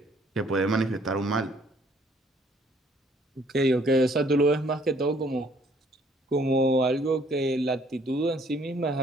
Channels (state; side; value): normal; both; correlation 0.62